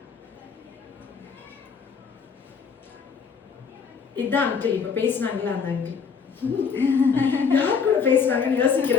இதுதான் அங்கிள் இப்ப பேசினாங்களா அந்த அங்கிள். யார் கூட பேசுறாங்கன்னு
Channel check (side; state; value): right; quieter; 6.0 dB